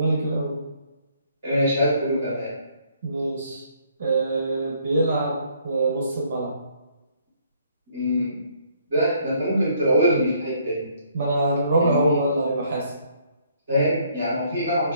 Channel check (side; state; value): both; inverted; correlation -0.66